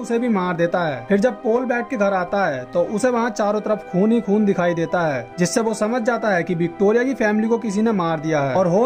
भी मार देता है। फिर जब पोल बैट के घर आता है तो उसे वहाँ चारों तरफ खून ही खून दिखाई देता है, जिससे वो समझ जाता है कि विक्टोरिया की फैमिली को किसी ने मार दिया है और हो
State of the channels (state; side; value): identical; both; correlation 1.00